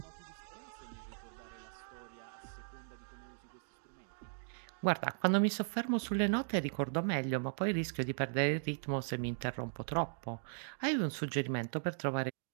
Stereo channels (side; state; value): left; silent; digital silence